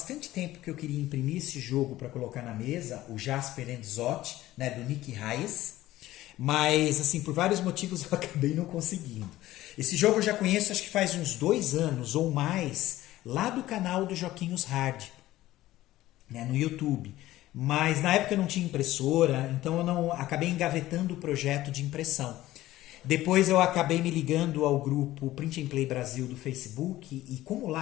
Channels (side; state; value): right; quieter; 15.7 dB